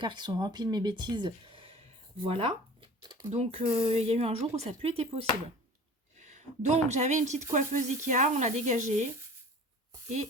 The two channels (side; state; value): both; normal; correlation 0.41